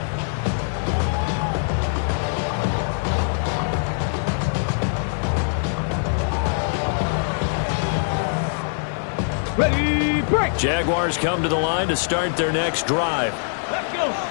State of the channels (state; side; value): silent; right; digital silence